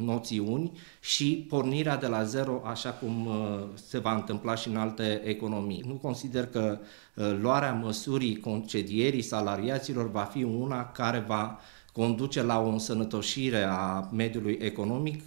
și pornirea de la zero, așa cum se va întâmpla și în alte economii. Nu consider că luarea măsurii concedierii salariaților va fi una care va conduce la o însănătoșire a mediului economic,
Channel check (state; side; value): silent; left; digital silence